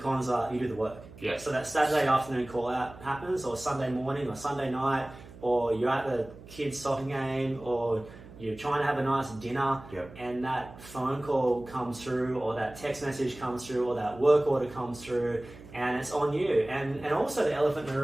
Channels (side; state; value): right; noise; hum, 18 dB below the sound